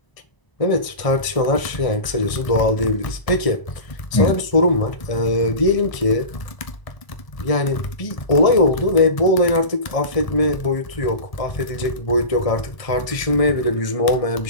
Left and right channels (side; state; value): right; late; 1.0 ms